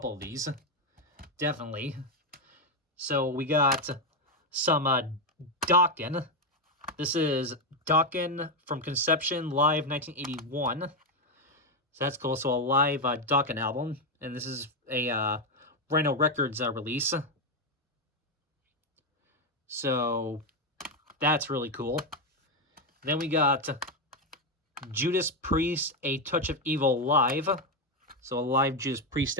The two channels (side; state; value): both; normal; correlation 0.06